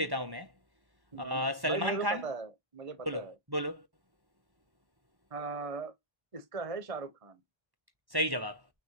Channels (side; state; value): left; late; 1.1 ms